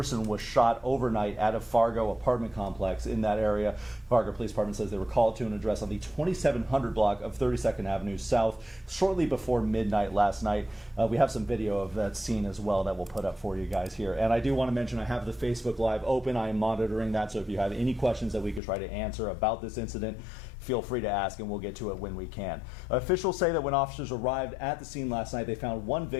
was shot overnight at a Fargo apartment complex in that area. Fargo Police Department says they were called to an address on the 2700 block of 32nd Avenue South shortly before midnight last night. We have some video of that scene as well that we'll put up for you guys here. And I do want to mention I have the Facebook Live open. I am monitoring that, so if you have any questions that we could try to answer about this incident, feel free to ask and we'll get to it when we can. Officials say that when officers arrived at the scene last night, they found one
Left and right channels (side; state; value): right; drops out; at 18.6 s